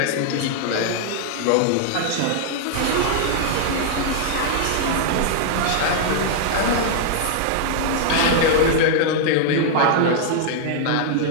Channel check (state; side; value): different; both; correlation -0.01